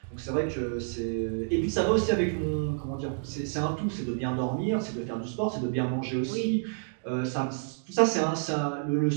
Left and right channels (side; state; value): left; silent; digital silence